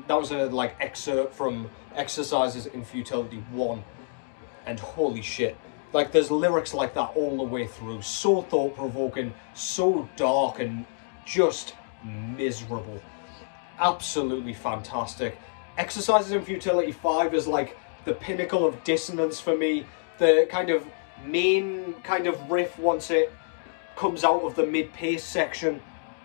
like excerpt from Exercises in Futility 1, and holy shit, like there's lyrics like that all the way through, so thought-provoking, so dark, and just miserable. Absolutely fantastic. Exercises in Futility 5 is like the pinnacle of dissonance for me. The kind of main kind of riff, once it comes out of the mid-pace section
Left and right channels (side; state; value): right; silent; digital silence